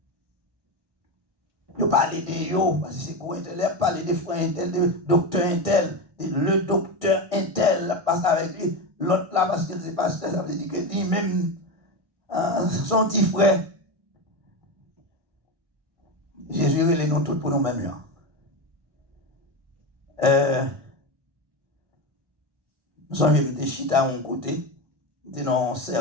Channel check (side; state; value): left; late; 1.6 ms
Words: Ils parlent de eux, parce que c'est quoi intel, ils parlent des frères intel, de docteur intel, le docteur intel passe avec lui, l'autre là, parce que c'est pasteur, ça veut dire que lui-même, son petit frère. Jésus les nous tous pour nous-mêmes là. Nous avons des chita à mon côté, nous dans un